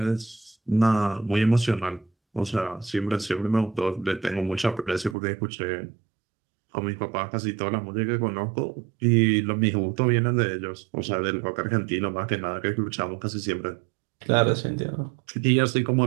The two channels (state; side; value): drops out; left; at 5.2 s